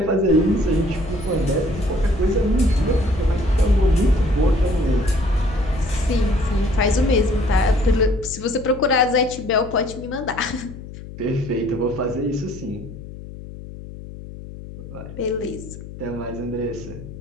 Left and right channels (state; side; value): noise; left; hum, 13 dB below the sound